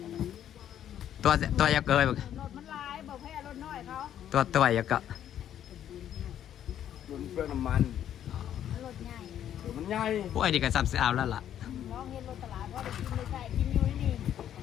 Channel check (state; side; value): quieter; right; 10.5 dB